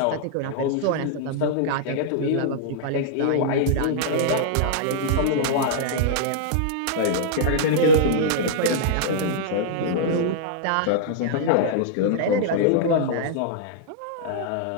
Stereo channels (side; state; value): both; different; correlation -0.02